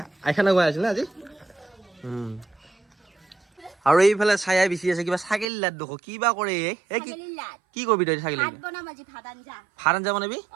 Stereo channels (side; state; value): left; drops out; at 5.5 s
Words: আইখানা গোৱাই আছিল আজি আৰু এইফালে চায়াই বিচি আছে কিবা ছাগলী লাত দেখো কিবা কৰে কি কৰবি তই ছাগলী ভাত আঞ্জা বনাবি